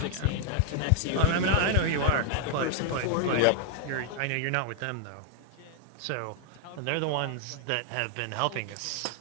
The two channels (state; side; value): different; both; correlation 0.00